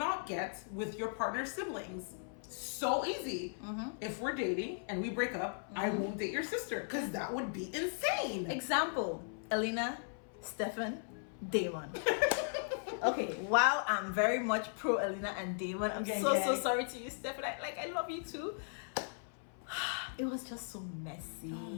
get with your partner's siblings. So easy. If we're dating and we break up, I won't date your sister because that would be insane. Example: Elena, Stefan, Damon. Okay, while I'm very much pro Elena and Damon, I'm so sorry to you, Stefan. I love you too. It was just so messy. Oh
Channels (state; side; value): silent; right; 53 dB below the other